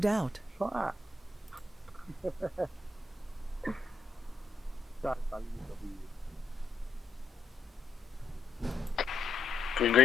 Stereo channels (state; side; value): quieter; right; 3.6 dB